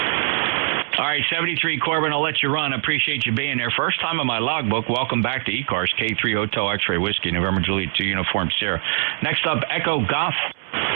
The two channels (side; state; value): left; silent; 64 dB below the other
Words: All right, 73 Corbin, I'll let you run. I appreciate you being there. First time on my logbook. Welcome back to ECARS, K3 Hotel X-Ray Whiskey, November Juliet 2 Uniform Sierra. Next up, Echo Golf.